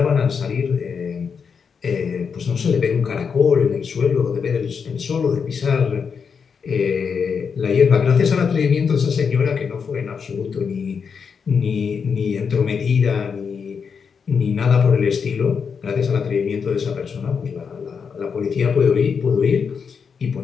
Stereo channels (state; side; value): quieter; right; 6.2 dB